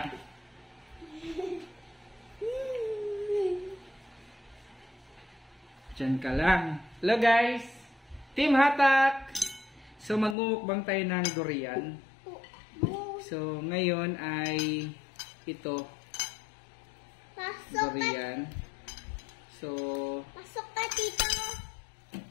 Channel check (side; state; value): right; drops out; at 10.4 s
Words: Diyan ka lang. Hello guys! Team Hatak! So magmumukbang tayo ng durian. So ngayon ay ito. Durian. So Pasok ka dito.